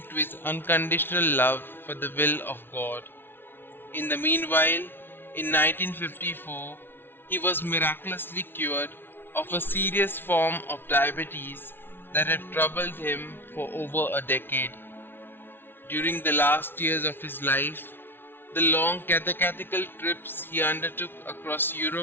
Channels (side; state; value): right; late; 0.11 ms